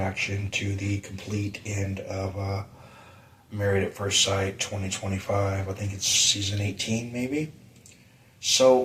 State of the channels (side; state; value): both; identical; correlation 1.00